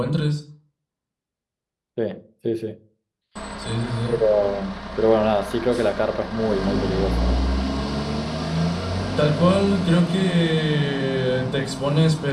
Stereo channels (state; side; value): identical; both; correlation 1.00